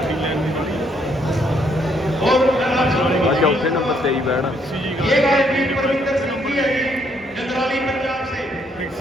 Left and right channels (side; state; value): both; normal; correlation 0.70